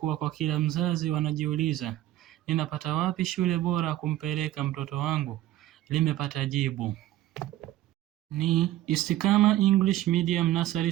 kwa kila mzazi wanajiuliza, ninapata wapi shule bora kumpeleka mtoto wangu, limepata jibu. Ni Istiqama English Medium Nursery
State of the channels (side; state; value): left; quieter; 14.4 dB